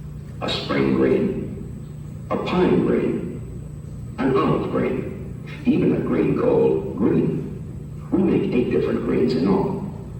a spring green, a pine green, an olive green, even a green called green. We make 8 different greens in all,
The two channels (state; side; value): identical; both; correlation 1.00